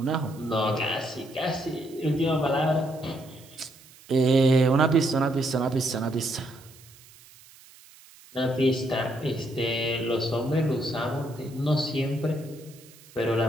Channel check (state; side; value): noise; right; hiss, 23 dB below the sound